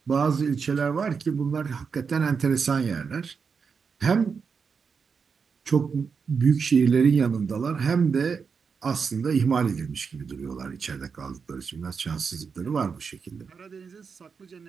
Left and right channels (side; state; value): left; quieter; 5.7 dB